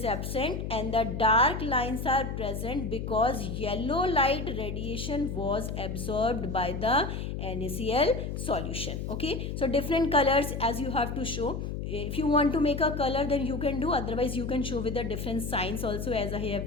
absent and the dark lines are present because yellow light radiation was absorbed by the NaCl solution. Okay, so different colors as you have to show. If you want to make a color, then you can do, otherwise you can show with the different signs also, as I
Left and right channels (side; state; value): left; noise; hum, 4 dB below the sound